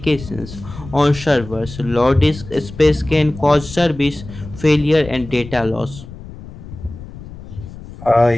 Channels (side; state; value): left; noise; rumble, 14 dB below the sound